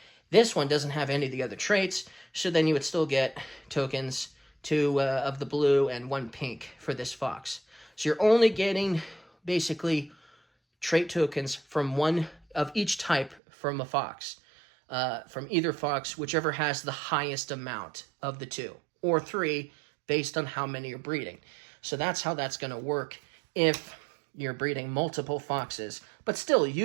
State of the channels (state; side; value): drops out; left; at 13.4 s